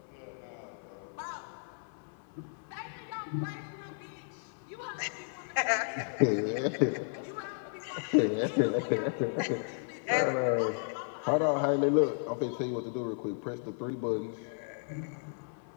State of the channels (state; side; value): silent; right; 55 dB below the other